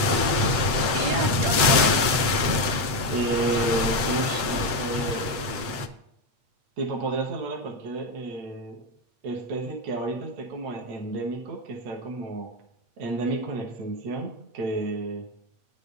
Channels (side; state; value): left; late; 8.6 ms